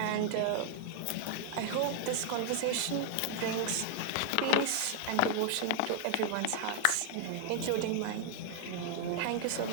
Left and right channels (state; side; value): different; both; correlation 0.00